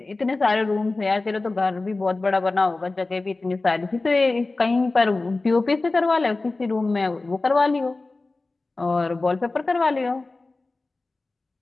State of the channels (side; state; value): right; quieter; 3.3 dB